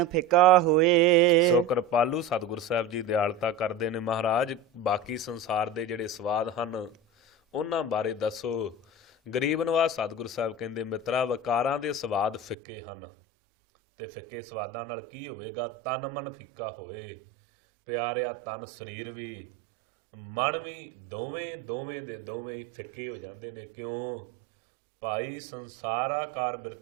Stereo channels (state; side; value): drops out; left; at 12.6 s